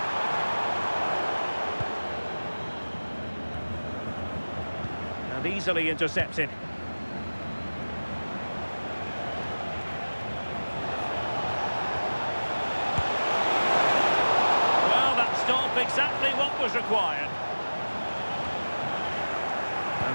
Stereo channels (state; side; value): inverted; both; correlation -1.00